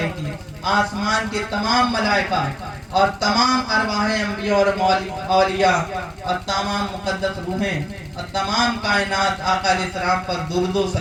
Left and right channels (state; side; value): identical; both; correlation 1.00